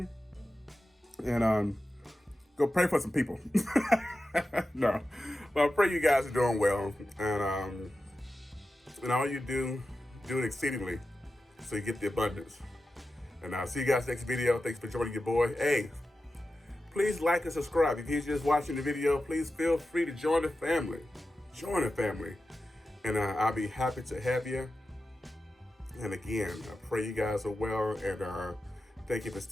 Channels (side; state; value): both; normal; correlation 0.92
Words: and go pray for some people. No, well, I pray you guys are doing well, and all you do it exceedingly, so you get the abundance. And I'll see you guys next video. Thanks for joining your boy. Hey, please like and subscribe. If you're just watching the video, please feel free to join the family. Join the family. And I'll be happy to have you. And again, I pray you guys are well. And thank you for